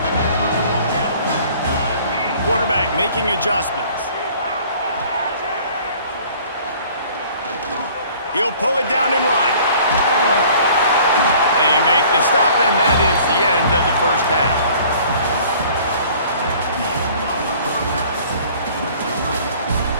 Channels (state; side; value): inverted; both; correlation -0.52